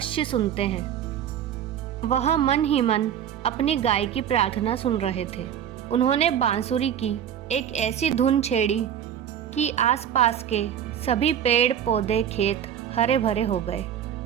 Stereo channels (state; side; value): quieter; left; 9.5 dB